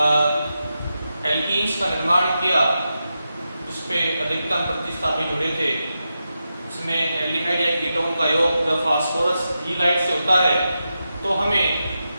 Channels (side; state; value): both; inverted; correlation -0.89